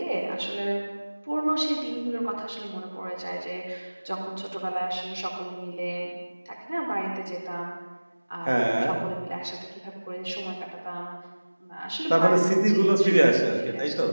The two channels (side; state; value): both; inverted; correlation -1.00